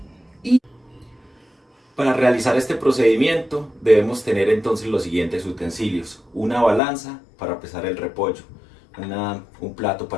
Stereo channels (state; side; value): drops out; right; at 6.8 s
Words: Para realizar este procedimiento debemos tener entonces los siguientes utensilios: una balanza para pesar el repollo, un plato